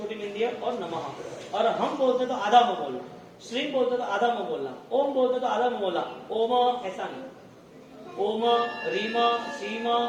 बिंदी है, और नमः। अरहम बोलते तो आधा मुंह बोलना, श्रीम बोलते तो आधा मुंह बोलना, ओम बोलते तो आधा मुंह बोलना, ओम ऐसा नहीं, ओम रीम श्रीम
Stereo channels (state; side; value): identical; both; correlation 1.00